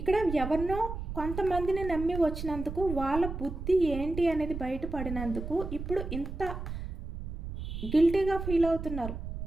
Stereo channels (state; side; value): noise; right; rumble, 7 dB below the sound